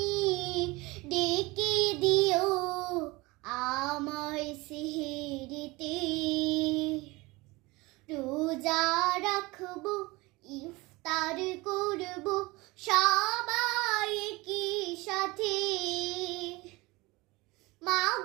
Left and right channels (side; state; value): left; quieter; 22.8 dB